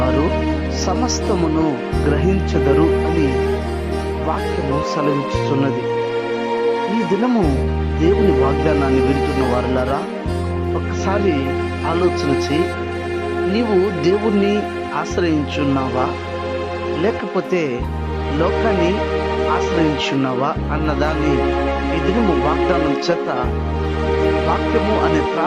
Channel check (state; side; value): identical; both; correlation 1.00